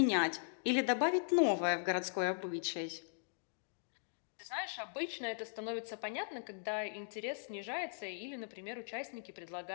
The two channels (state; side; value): silent; right; digital silence